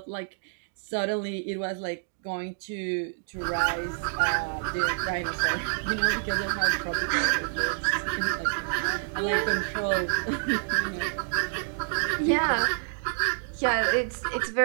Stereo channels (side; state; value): left; silent; digital silence